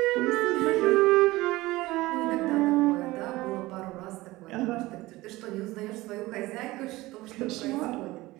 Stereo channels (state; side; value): quieter; left; 19.2 dB